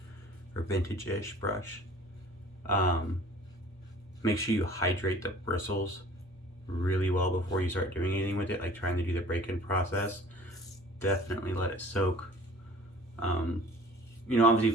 or vintage-ish brush, make sure you hydrate the bristles really well before you start doing anything with it, like trying to do the break-in process. Definitely let it soak. You know, obviously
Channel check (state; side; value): normal; both; correlation 0.49